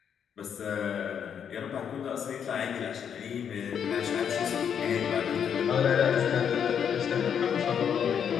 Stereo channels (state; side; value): quieter; right; 8.0 dB